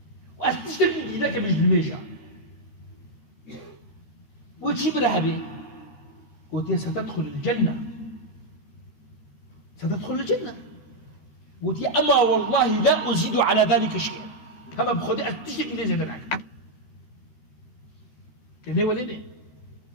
وأستشتكي لك بجد الميشا وتشي برهبي قلت ستدخل الجنة ستدخل الجنة قلت أما والله لا أزيد على ذلك شيئا هما بخدي أستشتكي لي زي ذلك تاني ولد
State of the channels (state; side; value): late; right; 13 ms